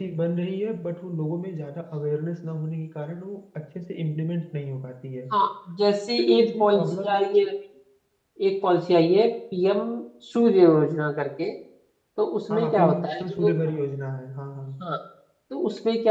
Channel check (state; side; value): identical; both; correlation 1.00